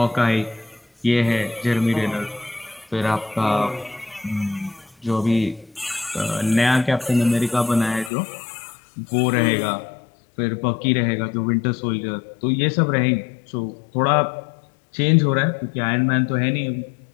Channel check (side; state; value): right; drops out; at 8.1 s